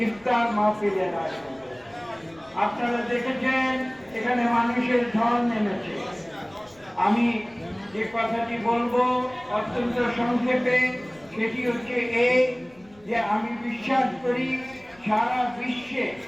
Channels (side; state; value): left; noise; rumble, 29 dB below the sound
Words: ইফতার মাহফিলের আয়োজন। আপনারা দেখেছেন এখানে মানুষের ঢল নেমেছে। আমি যে কথাটি বলবো অত্যন্ত সংক্ষেপে, সেটি হচ্ছে এই যে আমি বিশ্বাস করি সারা বিশ্বে